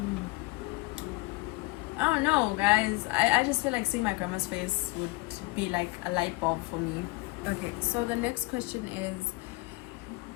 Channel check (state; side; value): quieter; right; 23.8 dB